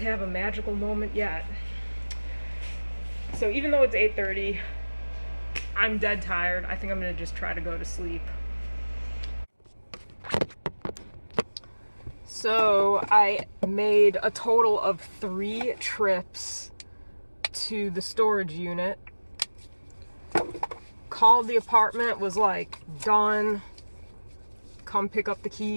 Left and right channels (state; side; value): inverted; both; correlation -1.00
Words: have a magical moment yet. So even though it's 8:30, I'm dead tired. I think I'm gonna just try to go to sleep. So I made a total of 3 trips to the storage unit. Called the apartment, was like, done, come pick up the